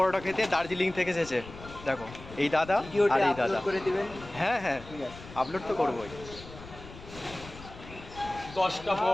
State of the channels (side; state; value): left; noise; rumble, 16 dB below the sound